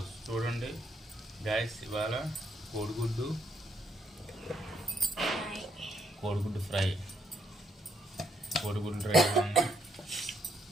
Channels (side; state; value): both; normal; correlation 0.75